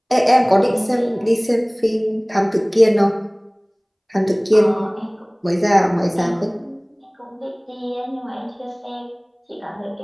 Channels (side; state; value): both; identical; correlation 1.00